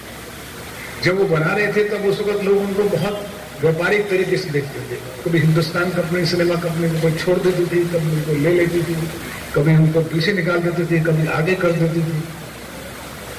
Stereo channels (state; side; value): identical; both; correlation 1.00